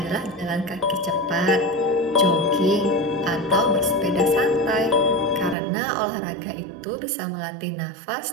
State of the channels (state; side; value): drops out; left; at 5.6 s